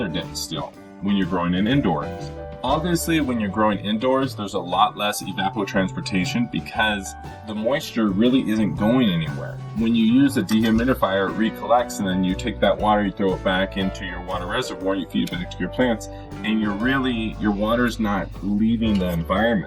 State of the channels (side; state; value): both; identical; correlation 1.00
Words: day still when you're growing in indoors. Obviously, when you're growing indoors, there's a lot less evapotranspiration because the moisture really isn't going anywhere. When you use a dehumidifier, it recollects, and then you take that water, you throw it back into your water reservoir, you feed it back to your plants, and your water's not leaving the